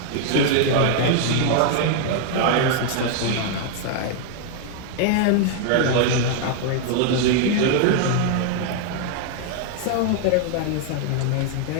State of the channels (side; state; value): both; different; correlation 0.00